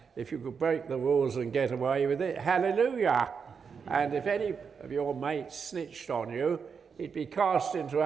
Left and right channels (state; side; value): quieter; left; 6.1 dB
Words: if you could break the rules and get away with it, hallelujah. And if any of your mates snitched on you, he'd be cast into